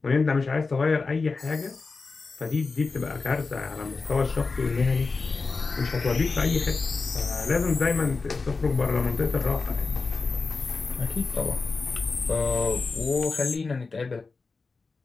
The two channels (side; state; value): right; quieter; 4.2 dB